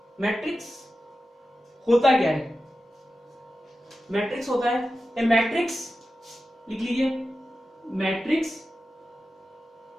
मैट्रिक्स होता क्या है? मैट्रिक्स होता है ए मैट्रिक्स, लिख लीजिए, matrix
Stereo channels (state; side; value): normal; both; correlation 0.93